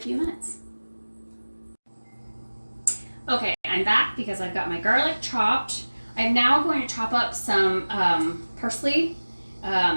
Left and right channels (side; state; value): both; inverted; correlation -1.00